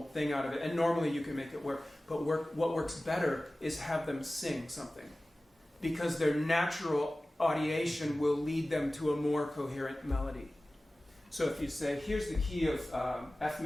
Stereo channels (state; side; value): normal; both; correlation 0.97